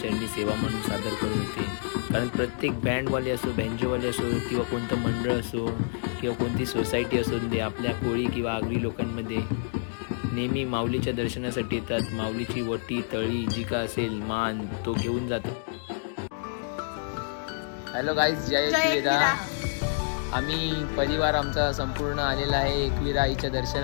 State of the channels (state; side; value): silent; right; digital silence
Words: सेवा म्हणून सादर करत होते. कारण प्रत्येक बँडवाले असो, बँजोवाले असो, किंवा कोणतं मंडळ असो, किंवा कोणती सोसायटी असो दे, आपल्या कोळी किंवा आगरी लोकांमध्ये नेहमी माऊलीच्या दर्शनासाठी येतात. माऊलीची वटी तळी जी का असेल मान तो घेऊन जातो. हॅलो गाईज, जय एकविरा. आम्ही परिवार आमचा संपूर्ण आलेला आहे एकविरा आईच्या